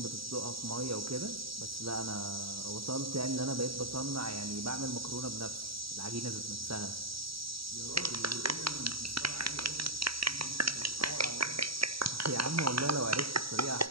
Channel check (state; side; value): late; left; 0.75 ms